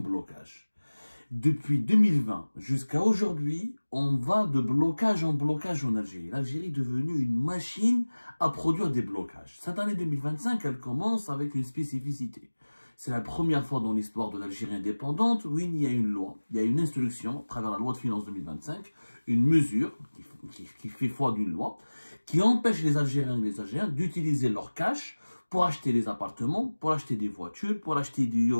Depuis 2020 jusqu'à aujourd'hui, on va de blocage en blocage en Algérie. L'Algérie est devenue une machine à produire des blocages. Cette année 2025, elle commence avec une spécificité. C'est la première fois dans l'histoire de l'Algérie indépendante où il y a une loi, il y a une instruction, à travers la loi de finances 2025, une mesure qui fait foi d'une loi, qui empêche les Algériens et les Algériens d'utiliser leur cash pour acheter des appartements, pour acheter des voitures, pour acheter des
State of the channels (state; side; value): inverted; both; correlation -1.00